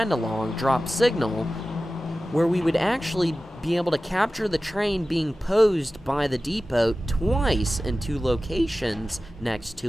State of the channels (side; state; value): both; normal; correlation 0.95